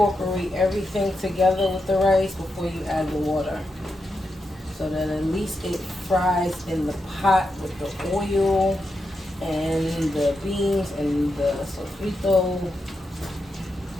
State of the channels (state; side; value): normal; both; correlation 0.86